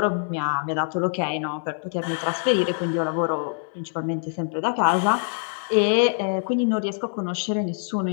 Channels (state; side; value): silent; right; digital silence